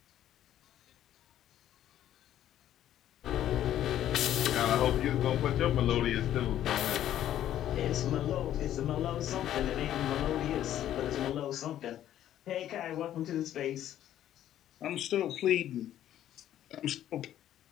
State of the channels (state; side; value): quieter; right; 11.8 dB